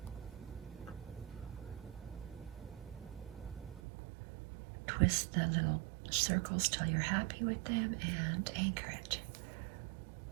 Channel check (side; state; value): left; drops out; at 3.8 s